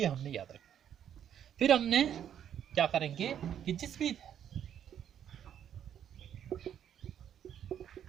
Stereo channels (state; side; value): quieter; left; 9.6 dB